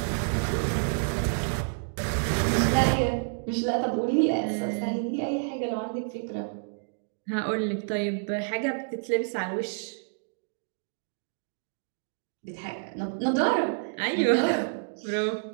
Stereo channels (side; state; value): left; silent; digital silence